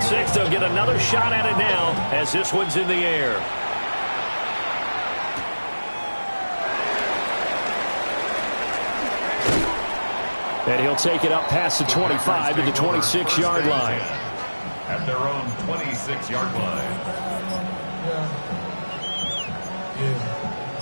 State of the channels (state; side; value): inverted; both; correlation -1.00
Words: six. They'll get another shot at it now as this one's in the air. And he'll take it up past the 25 to the 26-yard line. At their own 26-yard line.